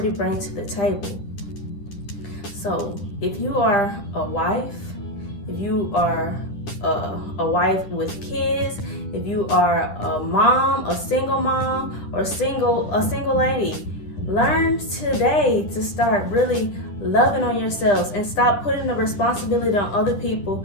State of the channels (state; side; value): late; right; 10 ms